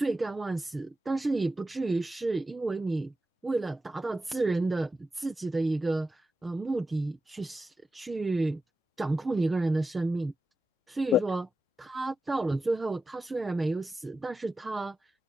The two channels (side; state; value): both; normal; correlation 0.92